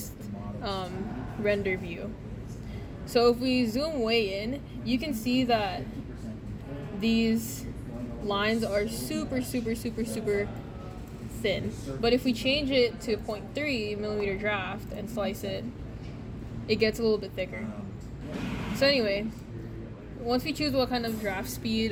render view. So if we zoom way in, you can see that these lines are super thin. But if we change it to 0.3 millimeter draft and slice it, it gets a little bit thicker. So anyway, once we choose what kind of draft speed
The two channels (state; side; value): identical; both; correlation 1.00